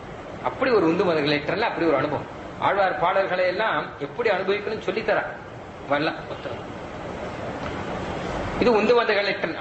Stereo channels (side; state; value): both; identical; correlation 1.00